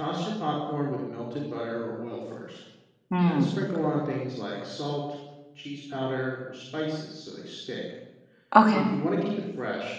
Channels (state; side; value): identical; both; correlation 1.00